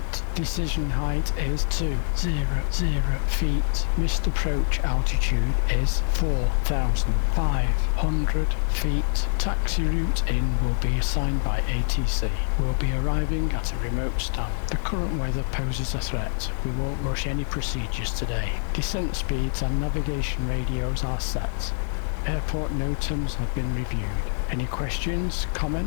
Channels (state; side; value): silent; right; 62 dB below the other